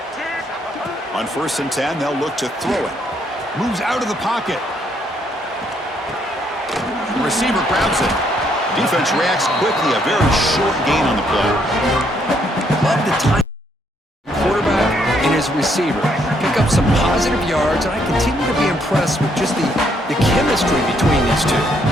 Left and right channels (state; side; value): normal; both; correlation 0.71